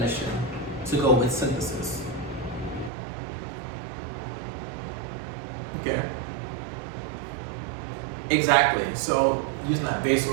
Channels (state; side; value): drops out; left; at 2.9 s